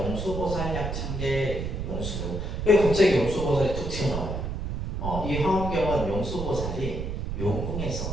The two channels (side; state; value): right; noise; rumble, 4 dB below the sound